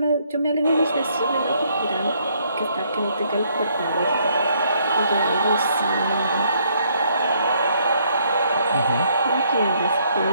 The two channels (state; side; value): inverted; both; correlation -0.68